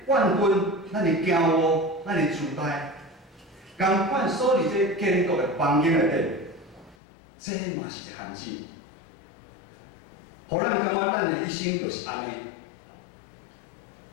怨恨、咱的骄傲、咱的自大，共款锁伫这建国的房间内底，这嘛是一限制。互咱感觉咱的一生就是安尼，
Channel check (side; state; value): right; drops out; at 7.0 s